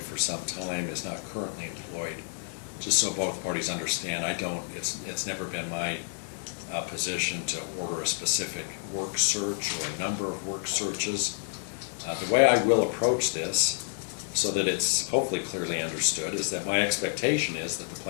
some time, is not currently employed. Just so both parties understand, it's never been my position to order a specific work search or a number of work searches. The way I will approach this, so that it's hopefully clearly understood, is that my expectation is that the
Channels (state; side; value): silent; right; digital silence